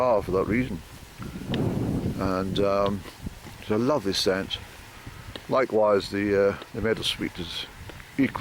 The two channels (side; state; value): both; identical; correlation 1.00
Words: for that reason. And it's a lovely scent. Likewise, the meadow sweet is